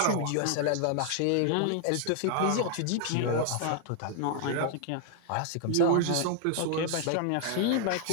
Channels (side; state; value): both; different; correlation 0.00